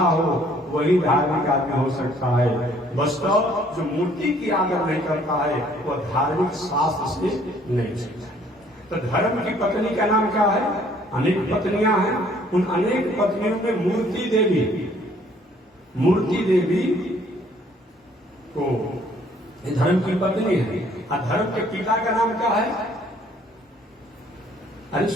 वही धार्मिक आदमी हो सकता है। वास्तव जो मूर्ति की आदर नहीं करता है, वह धार्मिक शास्त्र से नहीं सीखता। तो धर्म की पत्नी का नाम क्या है? अनेक पत्नियां हैं। उन अनेक पत्नियों में मूर्ति देवी, मूर्ति देवी को धर्म की पत्नी है। और धर्म के पिता का नाम क्या है? अरे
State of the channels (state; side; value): normal; both; correlation 0.60